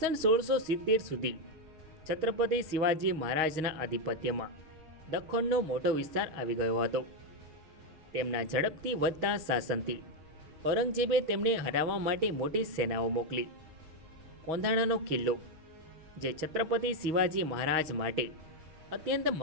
1670 સુધી છત્રપતિ શિવાજી મહારાજના આધિપત્યમાં દખ્ખણનો મોટો વિસ્તાર આવી ગયો હતો. તેમના ઝડપથી વધતા શાસનથી ઔરંગઝેબે તેમને હરાવવા માટે મોટી સેનાઓ મોકલી. કોંધાણાનો કિલ્લો, જે છત્રપતિ શિવાજી મહારાજ માટે અત્યંત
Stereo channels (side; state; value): left; late; 6.3 ms